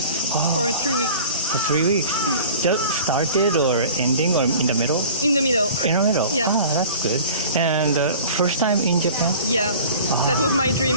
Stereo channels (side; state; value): both; inverted; correlation -0.43